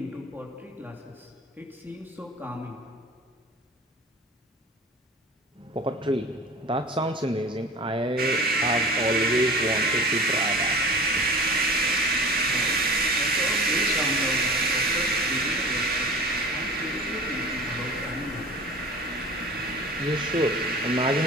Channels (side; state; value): both; normal; correlation 0.39